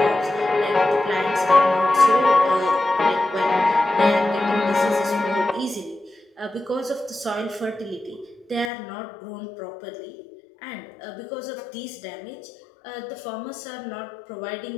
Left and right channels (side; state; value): right; drops out; at 8.7 s